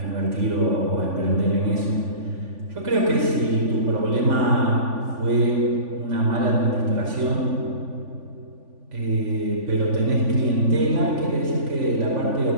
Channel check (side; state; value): left; late; 3.5 ms